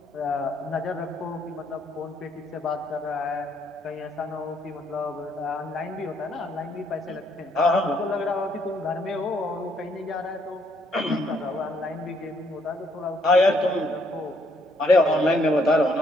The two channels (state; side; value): normal; both; correlation 0.69